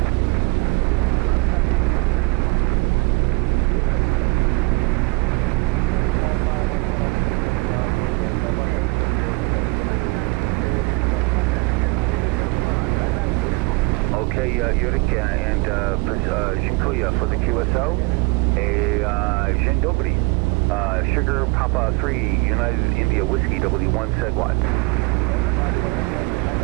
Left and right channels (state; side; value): quieter; left; 26.6 dB